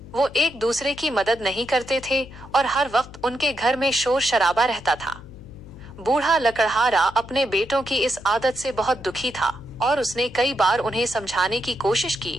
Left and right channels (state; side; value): noise; left; hum, 17 dB below the sound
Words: वो एक दूसरे की मदद नहीं करते थे और हर वक्त उनके घर में शोर शराबा रहता था। बूढ़ा लकड़हारा अपने बेटों की इस आदत से बहुत दुखी था और उसने कई बार उन्हें समझाने की कोशिश की